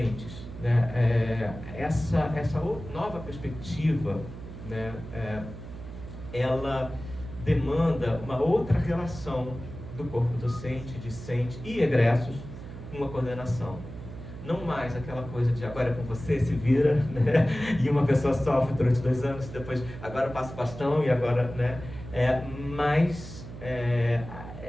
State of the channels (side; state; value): right; noise; hum, 12 dB below the sound